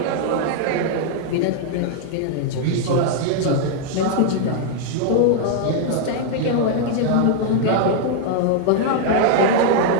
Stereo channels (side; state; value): both; different; correlation 0.00